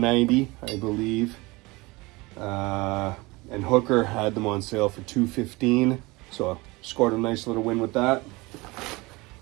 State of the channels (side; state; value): left; quieter; 23.2 dB